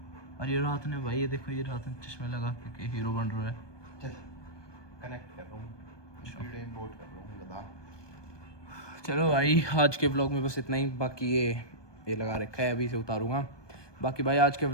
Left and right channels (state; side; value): late; right; 1.2 ms